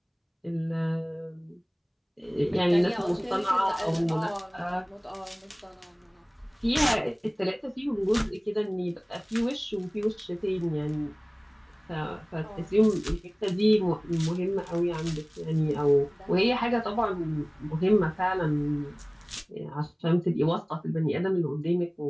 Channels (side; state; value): both; identical; correlation 1.00